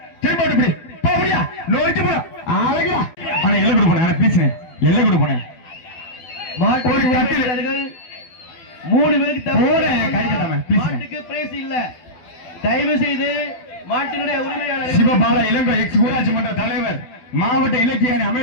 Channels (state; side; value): late; right; 12 ms